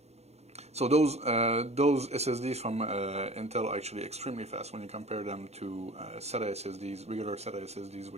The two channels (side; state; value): left; late; 0.31 ms